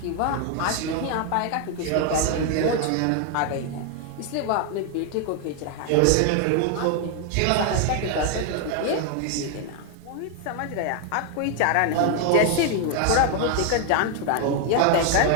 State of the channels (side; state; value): both; different; correlation 0.01